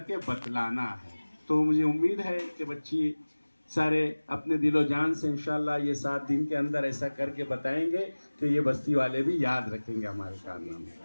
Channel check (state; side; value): inverted; both; correlation -1.00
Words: बतलाना है। तो मुझे उम्मीद है कि बच्ची सारे अपने दिलो जान से इंशाल्लाह ये 7 दिन के अंदर ऐसा करके बताएंगे कि ये बस्ती वाले भी याद रखेंगे हमारे कारनामे।